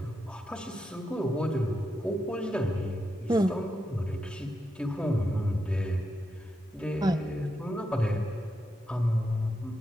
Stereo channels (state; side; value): normal; both; correlation 0.85